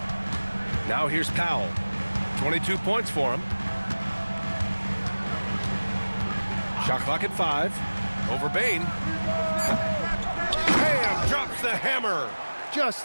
Now here's Powell. 22 points for him. Shot clock at 5. Over Bain. Bam! Drops the hammer.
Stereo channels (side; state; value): both; inverted; correlation -1.00